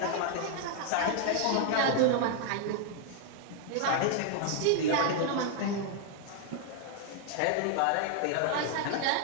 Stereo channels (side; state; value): both; different; correlation 0.00